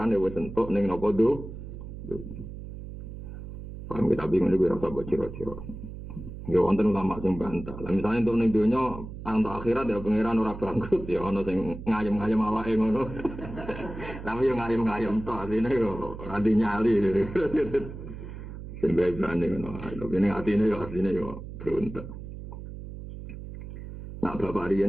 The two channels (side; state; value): right; noise; hum, 11 dB below the sound